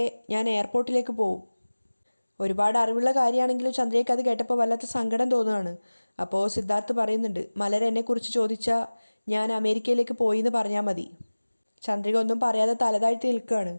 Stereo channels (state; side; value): inverted; both; correlation -1.00